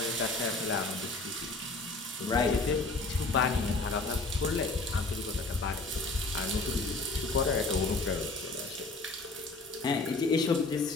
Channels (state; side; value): quieter; right; 3.3 dB